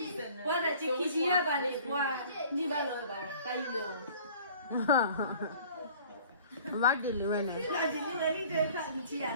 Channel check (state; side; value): inverted; both; correlation -0.49